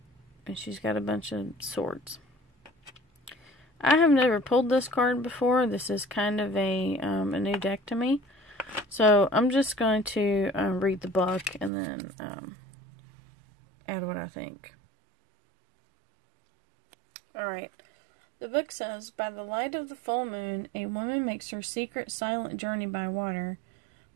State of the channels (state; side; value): drops out; left; at 11.7 s